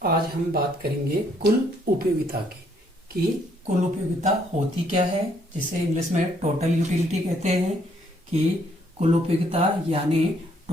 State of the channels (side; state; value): both; normal; correlation 0.68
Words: आज हम बात करेंगे कुल उपयोगिता की कि कुल उपयोगिता होती क्या है, जिसे इंग्लिश में टोटल यूटिलिटी कहते हैं। कि कुल उपयोगिता यानी